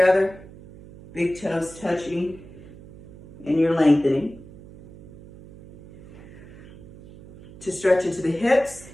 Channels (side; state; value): right; noise; hum, 19 dB below the sound